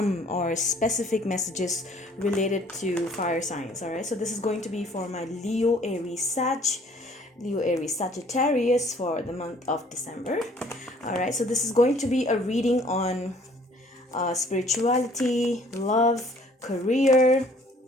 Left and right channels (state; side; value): normal; both; correlation 0.57